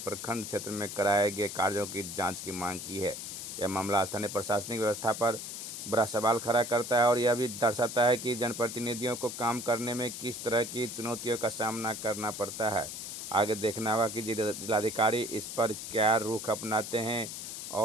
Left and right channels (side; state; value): left; noise; hiss, 8 dB below the sound